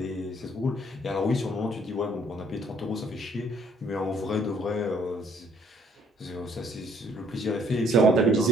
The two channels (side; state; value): both; normal; correlation 0.64